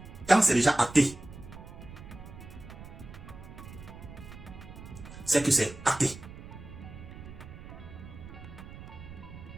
Quand c'est déjà acté, c'est que c'est acté.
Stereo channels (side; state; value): right; noise; rumble, 14 dB below the sound